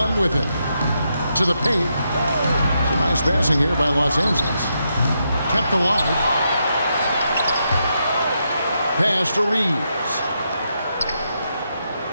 with it. To the paint. It's a nice passing here by Los Angeles. Kept alive. Pass to Reeves.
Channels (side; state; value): both; inverted; correlation -0.82